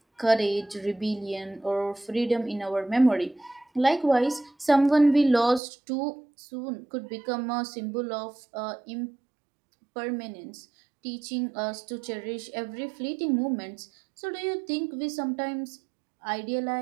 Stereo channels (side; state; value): left; drops out; at 5.6 s